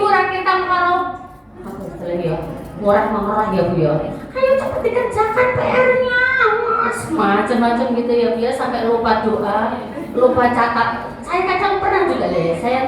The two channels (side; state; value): both; identical; correlation 1.00